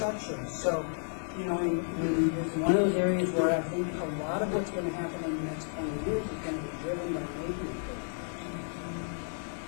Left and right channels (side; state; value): right; silent; 56 dB below the other